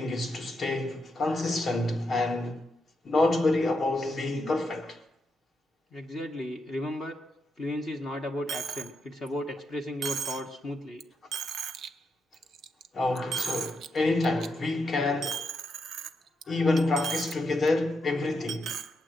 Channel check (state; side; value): normal; both; correlation 0.83